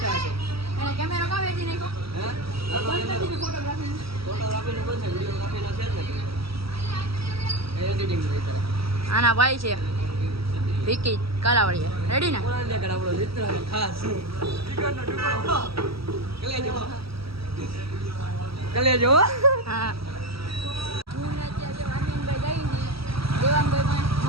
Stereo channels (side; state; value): left; late; 0.76 ms